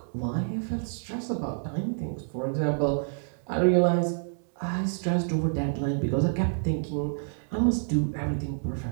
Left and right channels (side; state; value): left; silent; digital silence